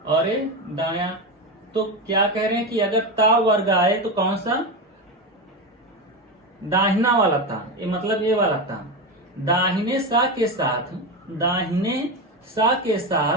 और ए दाया। तो क्या कह रहे हैं कि अगर ता वर्ग आए तो कौन सा, दाहिना वाला ता, ये मतलब ये वाला ता, दाहिने सा के साथ, दाहिने सा के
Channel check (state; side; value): normal; both; correlation 0.17